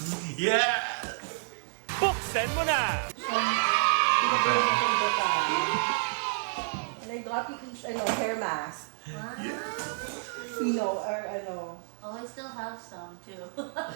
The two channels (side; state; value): left; silent; digital silence